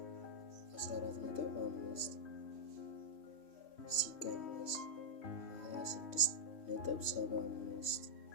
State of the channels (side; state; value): right; late; 3.1 ms